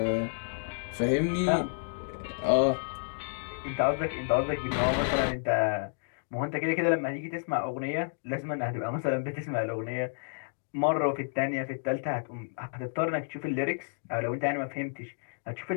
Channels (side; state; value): right; silent; digital silence